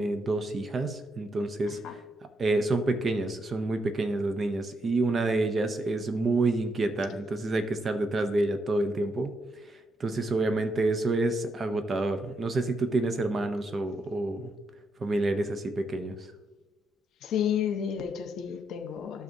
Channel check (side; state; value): both; normal; correlation 0.79